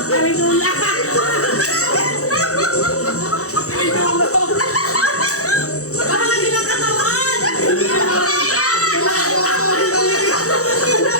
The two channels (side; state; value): right; late; 0.65 ms